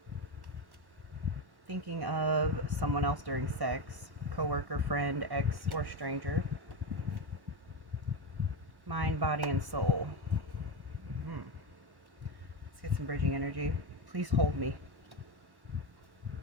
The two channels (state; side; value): late; left; 1.1 ms